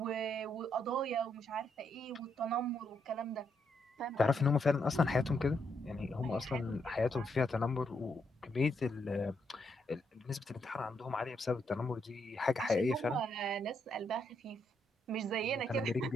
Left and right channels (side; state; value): both; normal; correlation 0.77